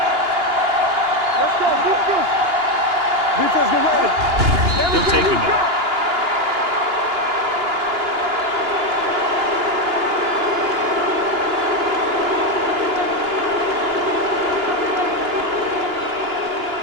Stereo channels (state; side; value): late; left; 2.8 ms